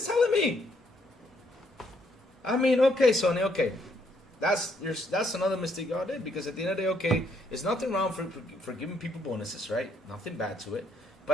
telling me. I mean, okay, Sony, okay. That's another mistake y'all did, because at the end of the day, okay, there's nothing wrong for giving people bonuses, right? Nothing bad to it.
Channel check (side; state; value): both; normal; correlation 0.71